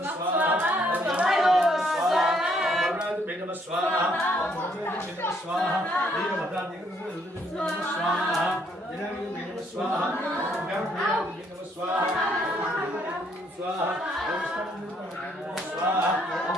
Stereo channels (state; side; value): normal; both; correlation 0.69